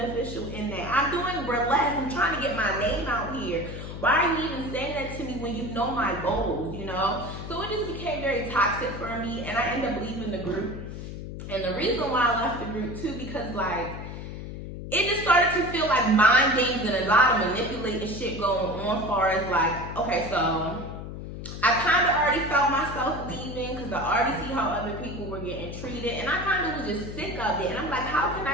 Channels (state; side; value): noise; left; hum, 9 dB below the sound